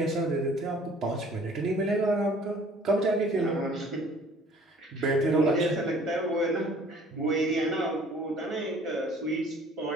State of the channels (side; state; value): both; normal; correlation 0.53